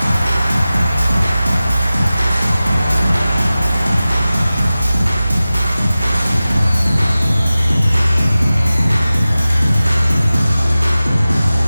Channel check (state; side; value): inverted; both; correlation -0.96